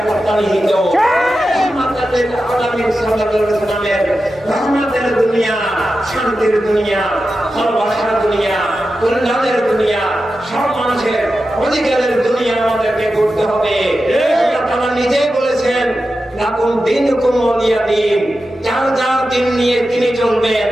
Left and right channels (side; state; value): both; normal; correlation 0.91